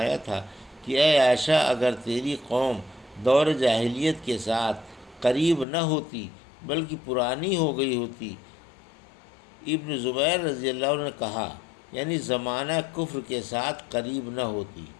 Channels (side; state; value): right; drops out; at 5.7 s